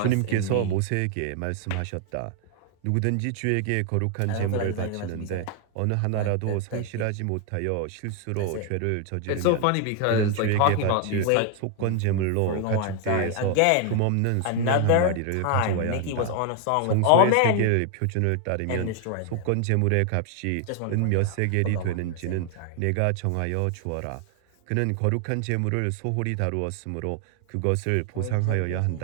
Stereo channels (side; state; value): both; different; correlation 0.00